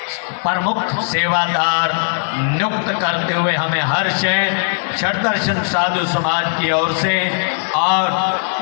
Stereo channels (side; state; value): right; silent; 67 dB below the other